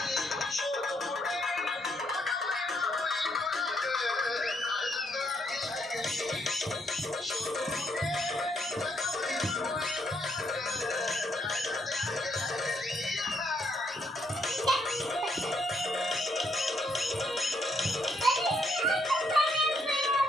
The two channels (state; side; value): normal; both; correlation 0.74